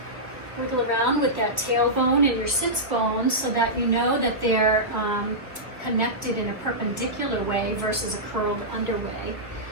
Wiggle around with that tailbone and your sits bones so that you know that they're connected in a perpendicular way versus a curled under way.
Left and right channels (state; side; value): late; left; 1.2 ms